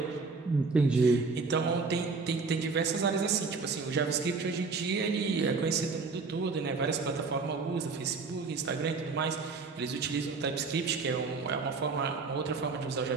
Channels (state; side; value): quieter; left; 4.4 dB